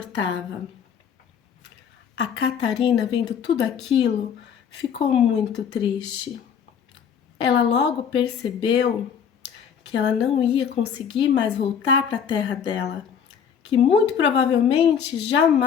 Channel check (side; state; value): right; quieter; 7.5 dB